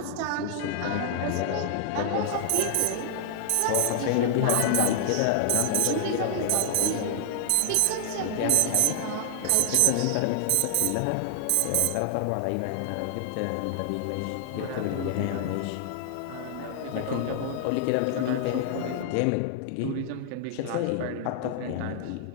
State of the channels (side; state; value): both; different; correlation 0.00